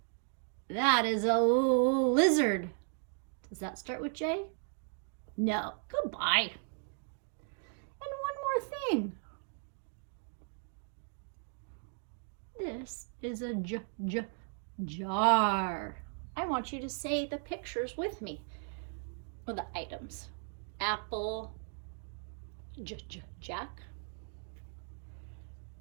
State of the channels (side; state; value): left; silent; 54 dB below the other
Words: That is a lizard. Does that start with J? No. Goodbye. And one more thing. This is a jar. I want you to say the pictures with me, or the items. Apple, Jack,